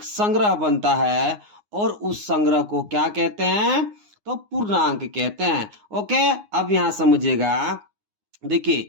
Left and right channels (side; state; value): left; late; 9.6 ms